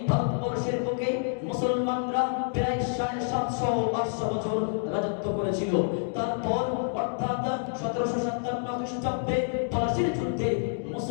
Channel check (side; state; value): right; silent; digital silence